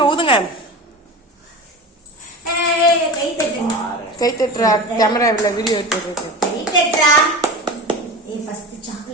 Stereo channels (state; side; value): normal; both; correlation 0.29